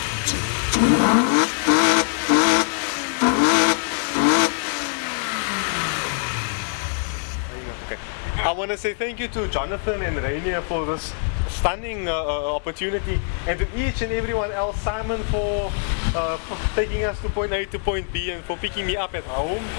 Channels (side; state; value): right; silent; 56 dB below the other